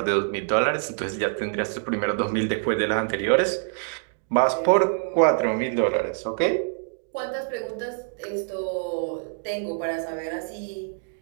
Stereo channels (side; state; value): left; silent; digital silence